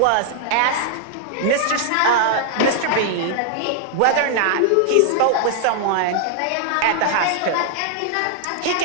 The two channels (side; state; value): both; different; correlation 0.00